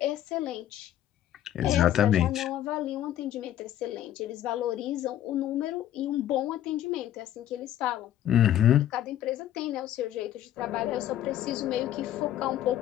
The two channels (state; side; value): quieter; right; 11.9 dB